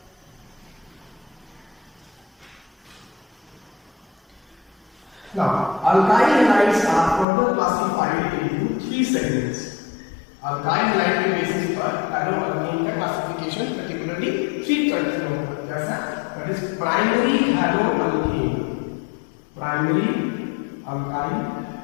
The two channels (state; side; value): drops out; right; at 7.2 s